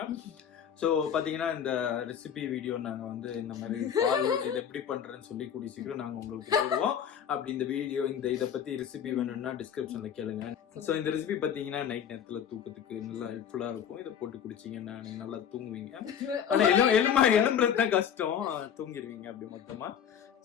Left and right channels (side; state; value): right; quieter; 8.5 dB